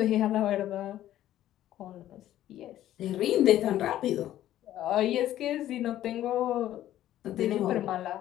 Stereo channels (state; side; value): quieter; right; 12.9 dB